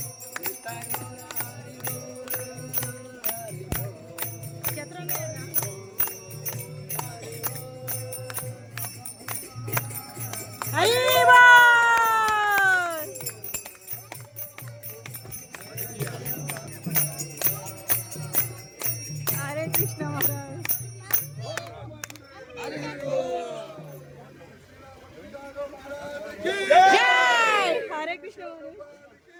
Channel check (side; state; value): both; identical; correlation 1.00